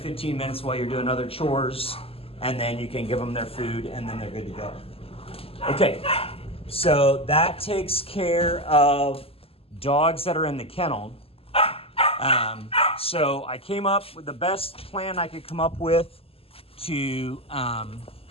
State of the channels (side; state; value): right; late; 0.28 ms